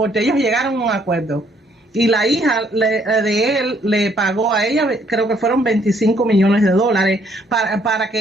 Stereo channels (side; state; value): both; normal; correlation 0.66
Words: ellos llegaron a un acuerdo. Y la hija de él le pagó a ella, creo que fueron 25 millones de dólares para